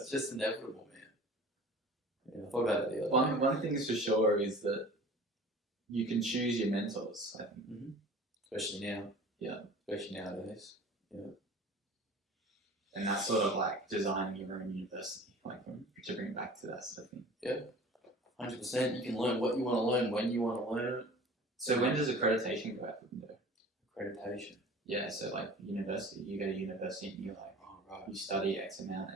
just inevitable, man. Yeah, I thought about it the other day. One thing is for sure is that you can choose your mentors, I think. Especially now. Yeah. Especially nowadays. Yeah. And that's sort of like designing your own university, like to bring it back to that sort of thing. Yeah. 100%. You can learn what you want to learn when you want to learn it. So when does accreditation go out the window? Accreditation. Yeah, so like university, you go to university and you're like, you study X amount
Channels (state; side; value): normal; both; correlation 0.42